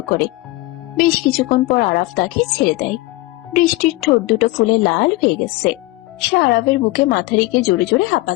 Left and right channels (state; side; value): quieter; right; 20.3 dB